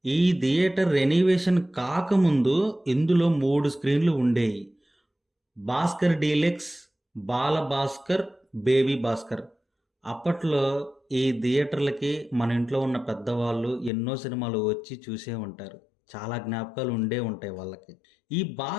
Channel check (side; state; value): right; drops out; at 13.9 s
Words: ఈ థియేటర్ రెనోవేషన్ కాకముందు ఇందులో 3 స్క్రీన్‌లు ఉండేయి. భాస్కర్ డీలక్స్, బాల భాస్కర్, బేబీ భాస్కర్. అప్పట్లో ఈ థియేటర్లకి మన ఇంట్లో ఉన్న పెద్దవాళ్ళు ఎన్నో సినిమాలు వచ్చి చూసే ఉంటారు. చాలా జ్ఞాపకాలు ఉండే ఉంటాయి వాళ్ళకి. ఈ